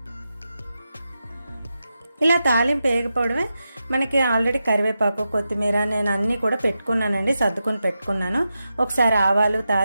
ఇలా తాలింపు వేగిపోవడమే. మనకి ఆల్రెడీ కరివేపాకు కొత్తిమీర నేను అన్నీ కూడా పెట్టుకున్నానండి, సర్దుకుని పెట్టుకున్నాను. ఒకసారి ఆవాలు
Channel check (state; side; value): inverted; both; correlation -0.89